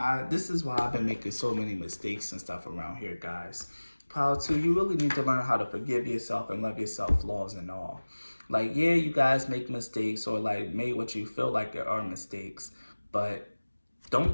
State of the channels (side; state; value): both; inverted; correlation -1.00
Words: this is why I've been making so many mistakes and stuff around here, guys. Power 2, you really need to learn how to forgive yourself and love yourself, flaws and all. Like, yeah, you guys make mistakes or like made what you feel like there are mistakes, but don't